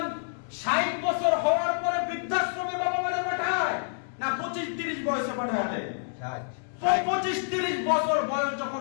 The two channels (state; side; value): silent; right; digital silence